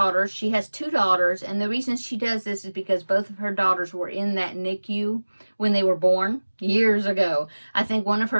she has 2 daughters, and the reason she does this is because both of her daughters were in that NICU when they were born years ago. I think one of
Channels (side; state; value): both; inverted; correlation -1.00